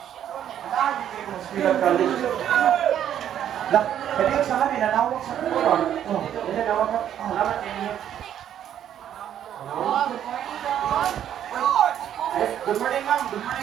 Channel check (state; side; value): quieter; left; 10.2 dB